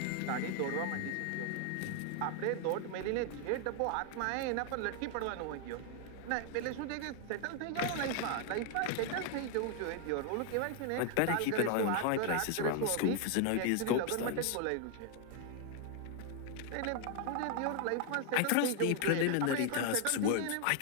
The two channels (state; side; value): different; both; correlation 0.00